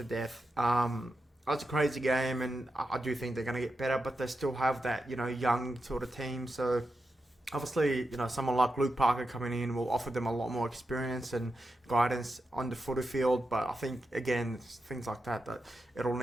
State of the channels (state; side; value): normal; both; correlation 0.88